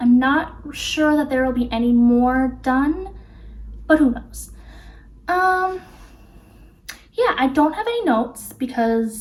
I'm not sure that there will be any more done, but who knows. Yeah, I don't have any notes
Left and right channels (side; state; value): both; identical; correlation 1.00